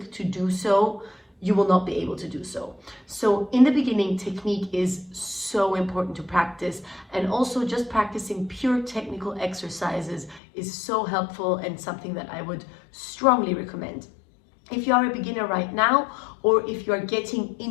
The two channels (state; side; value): drops out; right; at 10.4 s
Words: to do so, you will not be able to do so. So in the beginning, technique is so important to practice, and also just practicing pure technical exercises is so helpful and something that I would strongly recommend. If you are a beginner right now, or if you are getting